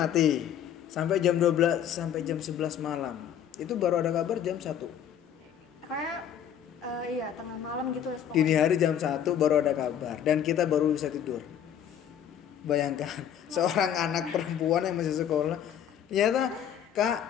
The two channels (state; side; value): quieter; right; 9.3 dB